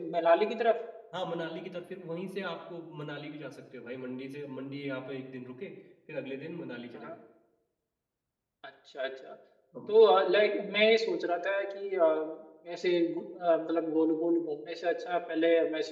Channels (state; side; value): identical; both; correlation 1.00